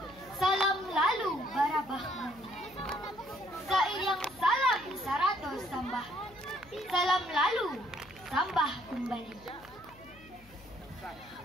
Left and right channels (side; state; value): left; noise; hum, 24 dB below the sound